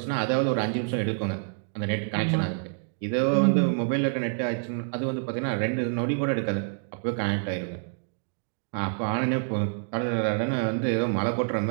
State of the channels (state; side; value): silent; left; digital silence